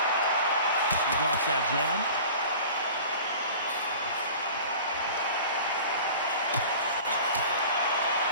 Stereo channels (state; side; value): inverted; both; correlation -0.41